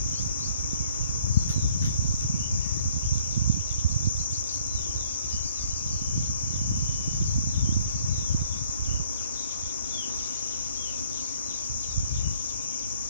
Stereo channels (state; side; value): inverted; both; correlation -0.61